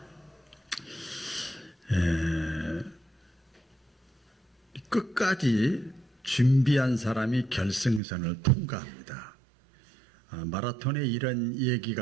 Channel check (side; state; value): left; drops out; at 8.0 s